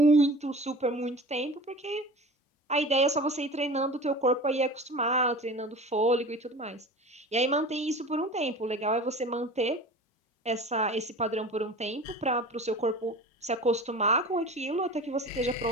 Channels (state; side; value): normal; both; correlation 0.37